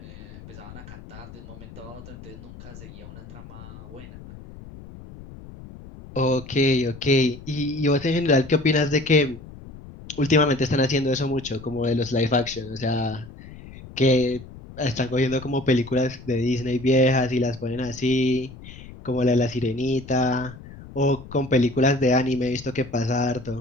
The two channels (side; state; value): left; noise; rumble, 16 dB below the sound